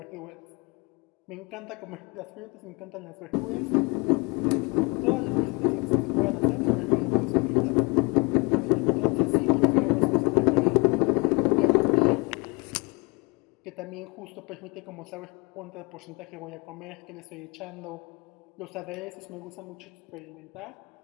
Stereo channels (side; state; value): right; quieter; 28.8 dB